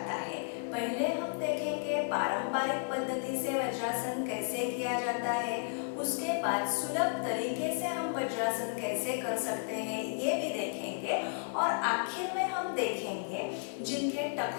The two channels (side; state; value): right; silent; digital silence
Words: है। पहले हम देखेंगे पारंपरिक पद्धति से वज्रासन कैसे किया जाता है, उसके बाद सुलभ तरीके से हम वज्रासन कैसे कर सकते हैं ये भी देखेंगे, और आखिर में हम देखेंगे जिनके